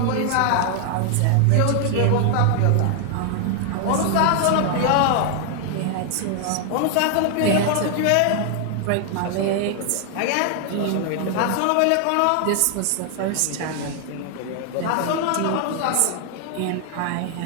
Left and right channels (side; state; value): both; different; correlation 0.00